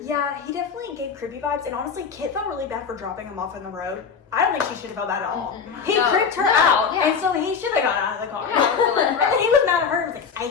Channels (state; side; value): quieter; right; 6.1 dB